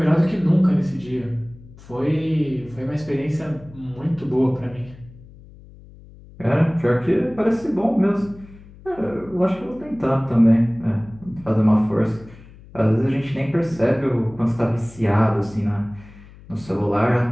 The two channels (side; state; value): left; noise; hum, 21 dB below the sound